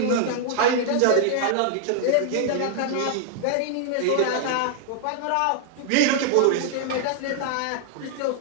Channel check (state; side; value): different; both; correlation 0.00